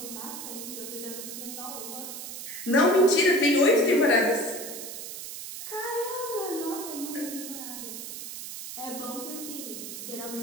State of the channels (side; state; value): right; noise; hiss, 9 dB below the sound